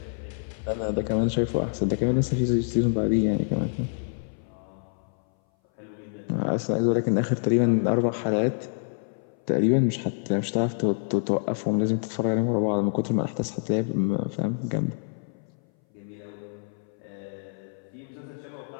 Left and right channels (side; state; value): right; silent; 59 dB below the other